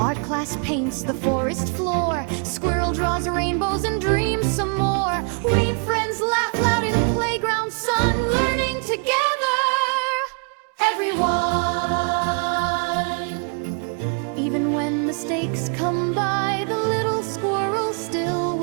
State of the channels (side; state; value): left; quieter; 39.9 dB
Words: class paints the forest floor. Squirrel draws rainbows and dreams some more. We friends laugh loud in playground sun. Learning together, everyone. Even when mistakes come by, the little squirrel still